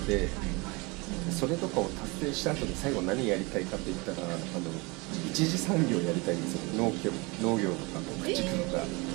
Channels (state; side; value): quieter; left; 26.7 dB